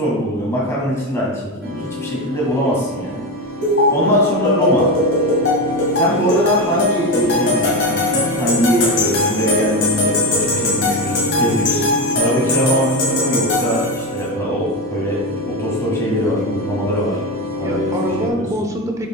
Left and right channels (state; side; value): normal; both; correlation 0.17